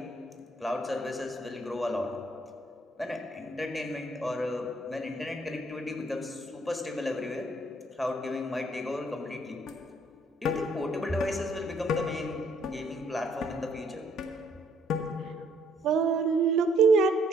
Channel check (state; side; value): normal; both; correlation 0.66